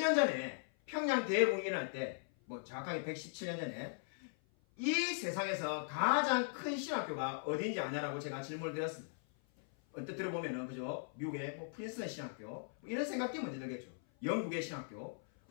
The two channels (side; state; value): right; silent; 52 dB below the other